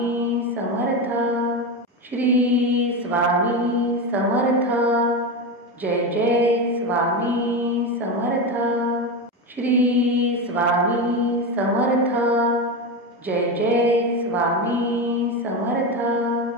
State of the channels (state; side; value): normal; both; correlation 0.17